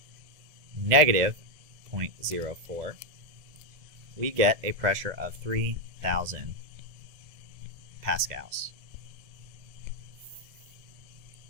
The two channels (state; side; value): late; left; 2.0 ms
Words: negative 0.04. We get a pressure of 3,000 pascals.